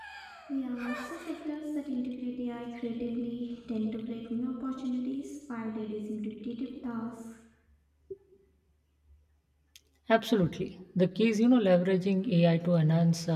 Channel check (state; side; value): identical; both; correlation 1.00